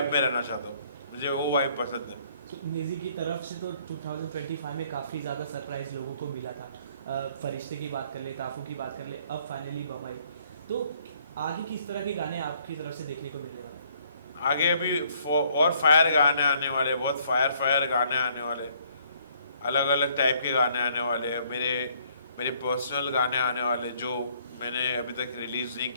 में रहना चाहता हूँ. मुझे वो वाइब पसंद है. नेजी की तरफ से तो 2025 में काफ़ी ज़्यादा सरप्राइज लोगों को मिला था. फरिश्ते की बात कर ले, ताफू की बात कर ले, अब फाइनली बम्बई. तो आगे किस तरह के गाने आपकी तरफ से देखने को मिलने वाले? आगे अभी और फायर गाने आने वाले, बहुत फायर गाने आने वाले, अलग अलग टाइप के गाने आने वाले हैं. मेरे पर्सनल गाने आने वाले जो मैंने अभी तक रिलीज़ नहीं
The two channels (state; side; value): inverted; both; correlation -0.64